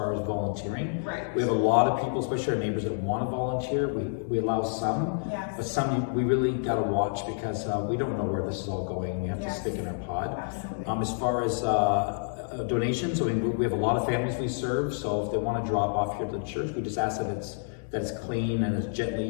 as volunteering. Right. We have a lot of people, especially our neighbors, that want to volunteer. We allow some, but some we really got to watch because we don't know where this is all going. We have to stick in our pod. Absolutely. As far as donations, I mean, we have a lot of families we serve, so if they want to drop off here to the church, we just ask that it's clean and it's gently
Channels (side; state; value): right; silent; digital silence